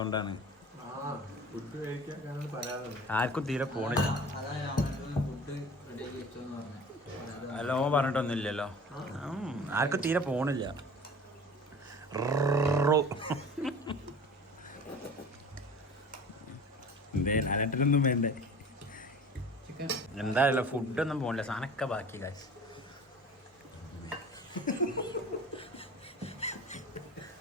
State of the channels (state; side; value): normal; both; correlation 0.41